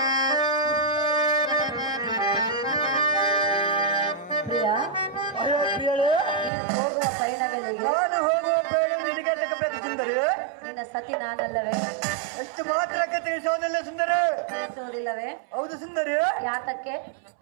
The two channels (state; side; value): drops out; left; at 6.5 s